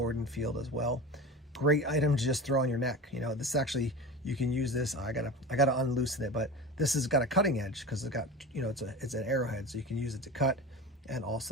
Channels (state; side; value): normal; both; correlation 0.30